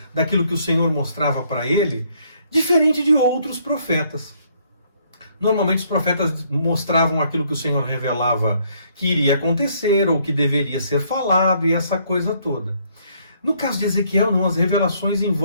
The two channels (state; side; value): inverted; both; correlation -0.67